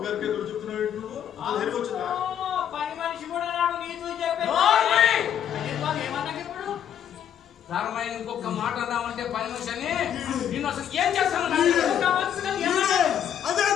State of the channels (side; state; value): right; quieter; 9.6 dB